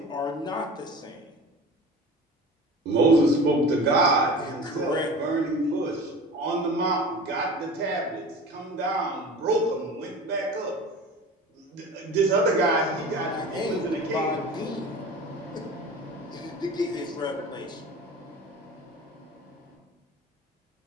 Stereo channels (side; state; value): both; normal; correlation 0.37